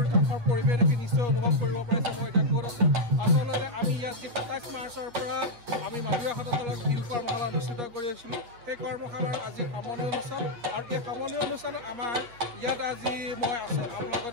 কাষৰ পৰিৱেশ দেখি নিশ্চয় অনুভৱ কৰিব পাৰিছে মই এতিয়া ক'ত আছোঁ। আচলতে আমি ইয়াত যি ২৭ মাৰ্চৰ পৰা আমি মাধুৰী আখতৰ তলত বিহু কৰ্মশালা অনুষ্ঠিত কৰি আছিলোঁ, সেই কৰ্মশালাৰ আজি সামৰণি অনুষ্ঠান। আৰু এই সামৰণি অনুষ্ঠানত আমাৰ ইয়াত আজি মই আছোঁ, আপোনালোকক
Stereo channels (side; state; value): left; late; 8.3 ms